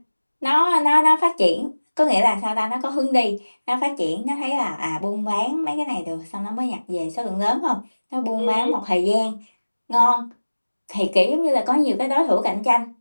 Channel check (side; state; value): both; inverted; correlation -1.00